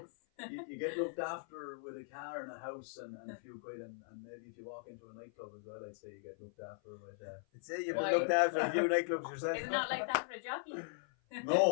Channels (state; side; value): silent; right; 52 dB below the other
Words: you get looked after with a car and a house and a few quid and maybe if you walk into a nightclub as well, I'd say you get looked after with. I'd say you've been looked after a few nightclubs yourself. It's not like that for a jockey.